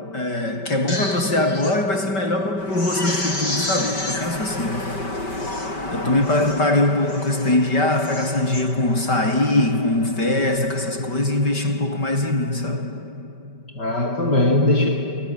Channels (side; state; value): right; late; 5.2 ms